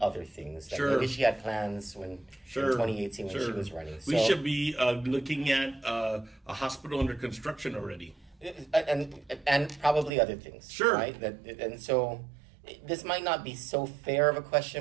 other things. Like maybe she had plans in 2018 when she was running. We should be looking at a hospital under construction already. And probably other things, right? And so this might not be so fair of a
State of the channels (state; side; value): drops out; left; at 10.1 s